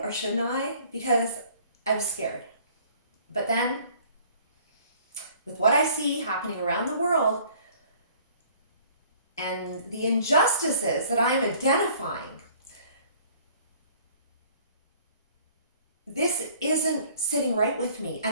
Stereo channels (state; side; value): inverted; both; correlation -0.55